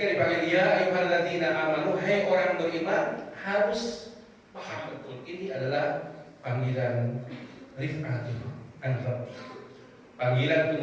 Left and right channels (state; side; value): identical; both; correlation 1.00